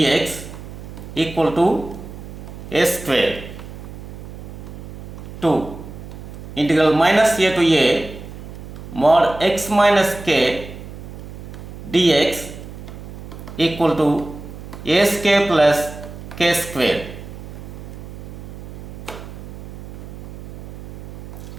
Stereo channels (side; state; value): right; noise; hum, 12 dB below the sound